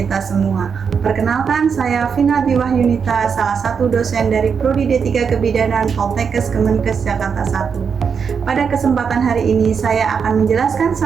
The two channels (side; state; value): left; quieter; 6.3 dB